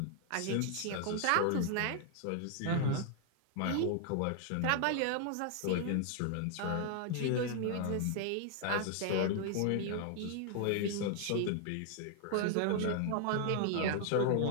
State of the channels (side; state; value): both; different; correlation 0.00